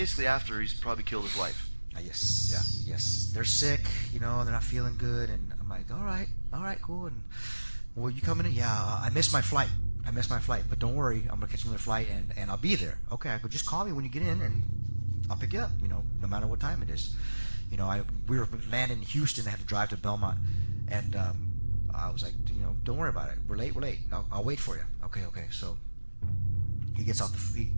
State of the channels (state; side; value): inverted; both; correlation -1.00